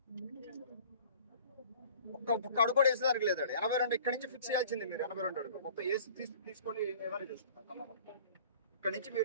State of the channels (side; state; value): both; inverted; correlation -0.48